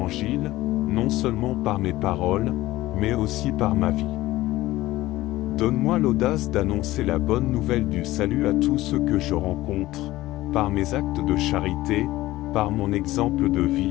non seulement par mes paroles, mais aussi par ma vie. Donne-moi l'audace d'annoncer la bonne nouvelle du salut à tous ceux que je rencontre, par mes actes de charité, par mon exemple de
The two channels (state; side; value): quieter; right; 17.0 dB